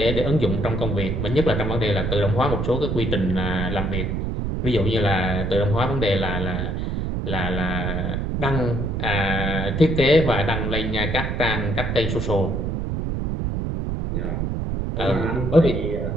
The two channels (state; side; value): noise; right; rumble, 1 dB below the sound